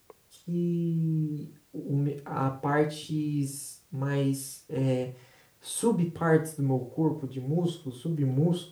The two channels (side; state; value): both; identical; correlation 1.00